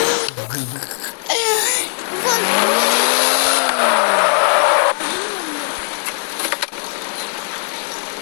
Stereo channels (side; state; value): right; silent; digital silence